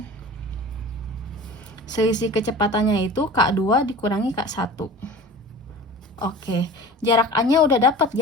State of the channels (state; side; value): normal; both; correlation 0.38